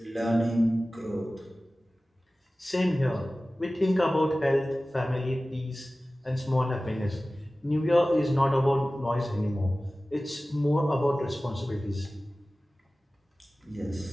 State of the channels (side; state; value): both; normal; correlation 0.97